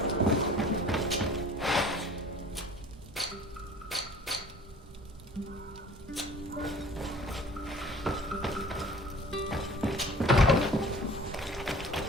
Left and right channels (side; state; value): both; normal; correlation 0.48